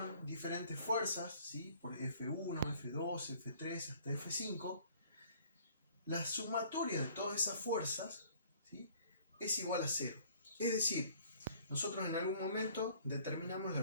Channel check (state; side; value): inverted; both; correlation -0.56